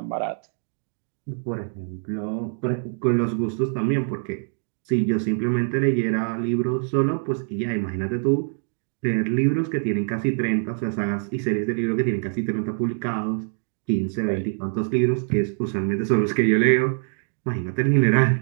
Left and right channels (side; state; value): left; silent; 60 dB below the other